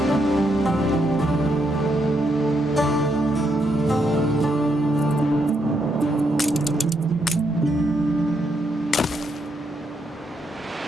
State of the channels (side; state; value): both; normal; correlation 0.78